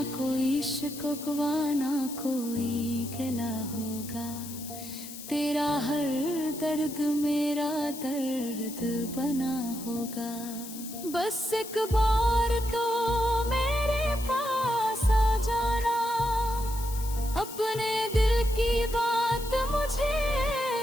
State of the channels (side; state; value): left; noise; hiss, 12 dB below the sound